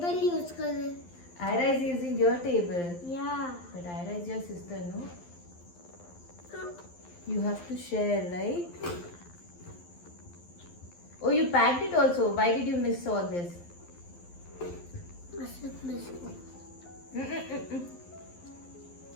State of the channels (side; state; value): right; late; 11 ms